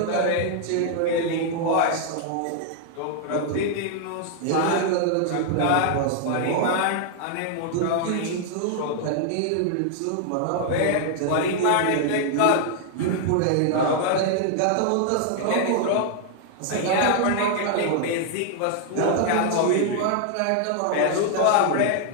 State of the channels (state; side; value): different; both; correlation 0.00